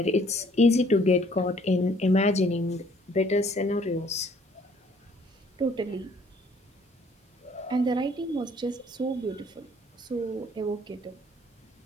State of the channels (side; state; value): both; normal; correlation 0.60